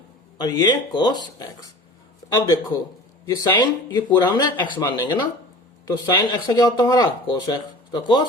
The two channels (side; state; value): both; normal; correlation 0.40